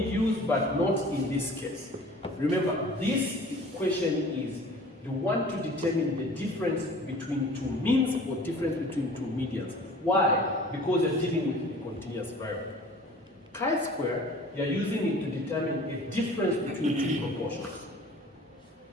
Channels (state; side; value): normal; both; correlation 0.46